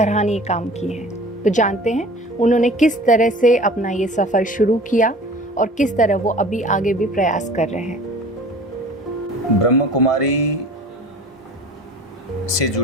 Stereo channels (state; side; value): normal; both; correlation 0.43